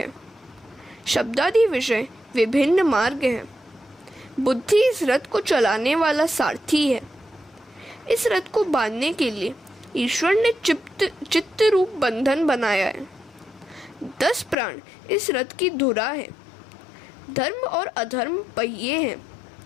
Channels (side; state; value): right; drops out; at 14.6 s